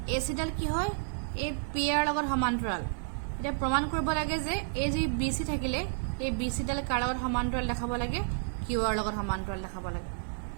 AC ডাল কি হয় এই PR ৰ লগত সমান্তৰাল এতিয়া প্ৰমাণ কৰিব লাগে যে এই যে BC থাকিলে এই BC ডাল কাৰ লগত সমান্তৰাল দেখাব লাগে QR ৰ লগত সমান্তৰাল দেখাব লাগে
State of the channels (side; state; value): left; silent; digital silence